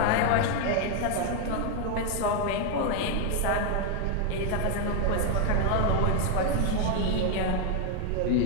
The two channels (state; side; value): different; both; correlation 0.01